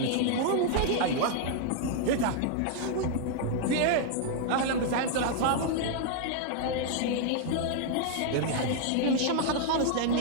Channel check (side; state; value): both; different; correlation 0.00